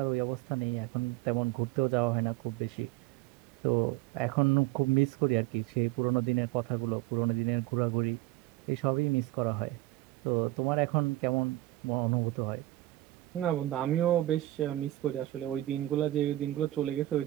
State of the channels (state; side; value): quieter; left; 16.4 dB